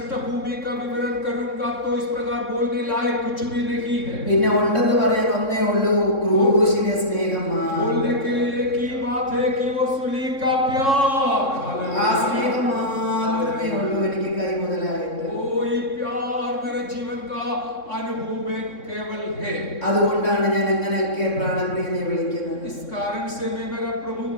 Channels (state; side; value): late; right; 3.6 ms